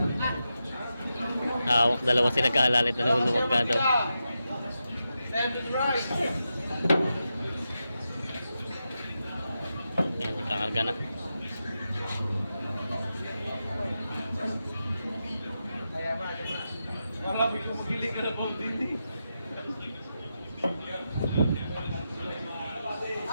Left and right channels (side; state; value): both; inverted; correlation -0.89